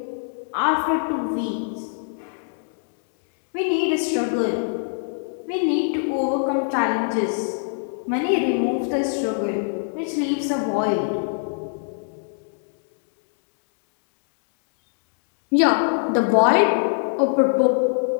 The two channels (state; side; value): silent; right; digital silence